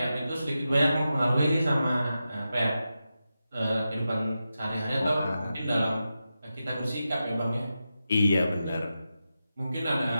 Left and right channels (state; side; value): inverted; both; correlation -0.90